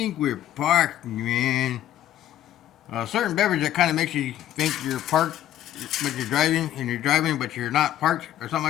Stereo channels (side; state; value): right; quieter; 12.1 dB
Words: we're parked, man." A certain beverage that kind of makes you think you're parked, but you're driving, and you're driving, but you're not parked, or